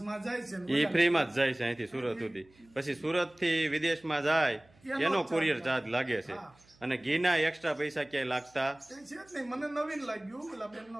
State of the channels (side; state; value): right; noise; hum, 30 dB below the sound